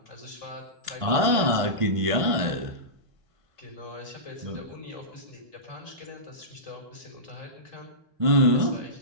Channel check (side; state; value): left; late; 1.5 ms